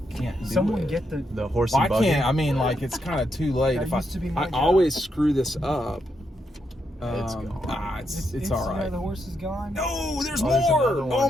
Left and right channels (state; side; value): normal; both; correlation 0.81